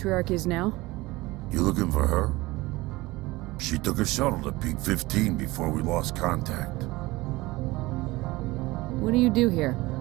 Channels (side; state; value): left; quieter; 20.5 dB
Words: is now? You looking for her? She took a shuttle to Peak 15 before we lost contact. What do you do here?